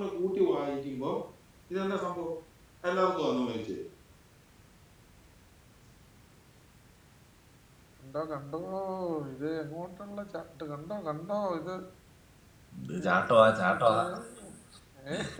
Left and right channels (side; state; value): both; identical; correlation 1.00